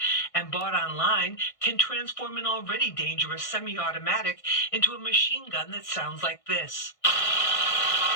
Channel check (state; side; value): late; right; 1.6 ms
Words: and bought online can transform an already dangerous semi-automatic into a machine gun that sounds like this.